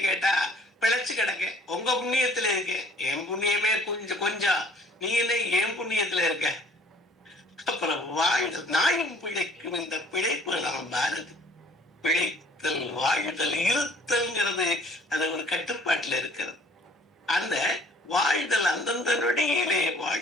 கேட்டா பிழைச்சு கிடக்க, உங்க புண்ணியத்துல இருக்க, என் புண்ணியமே கொஞ்சம், நீ என்ன என் புண்ணியத்துல இருக்க. அப்புறம் வாழ்தல், நாயும் பிழைக்கும் இந்த பிழைப்பு நாம் பாரதி. பிழைத்தல், வாழ்தல், இருத்தல்ங்கிறது அது ஒரு கட்டுப்பாட்டுல இருக்கிறது. அந்த வாழ்தல் அந்தந்த நொடியிலே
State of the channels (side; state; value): both; normal; correlation 0.56